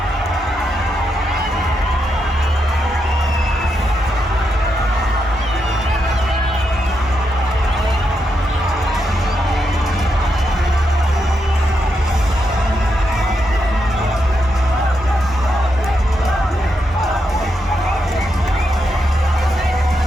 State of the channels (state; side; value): normal; both; correlation 0.83